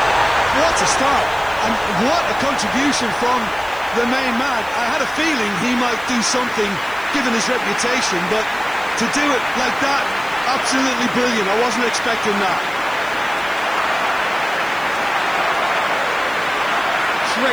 What a start! And what a contribution from the main man. I had a feeling he might do something, given his reputation, but to do it like that, absolutely brilliant. I wasn't expecting that.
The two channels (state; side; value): noise; left; hiss, 22 dB below the sound